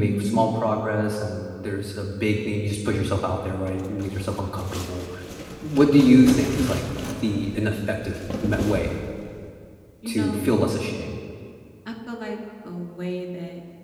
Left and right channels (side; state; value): both; identical; correlation 1.00